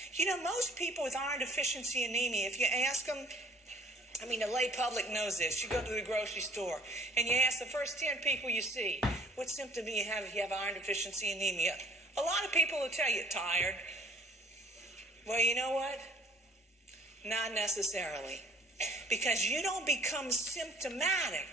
You know, most people with iron deficiency anemia, if you ask them, I mean, the lay public knows this. You go to the grocery store and you ask the first 10 people you see, what symptom do you have if you have iron deficiency anemia? A lot of people will tell you, tired. Well, you know what? Not necessarily. Because you don't become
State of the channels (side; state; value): both; normal; correlation 0.54